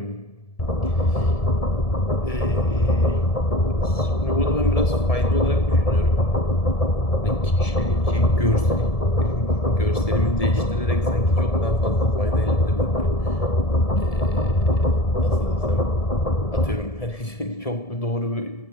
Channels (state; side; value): late; right; 1.7 ms